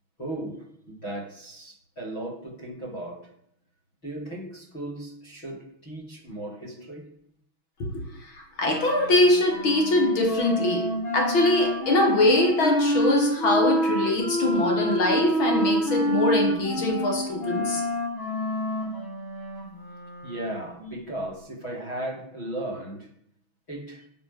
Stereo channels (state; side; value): late; right; 6.2 ms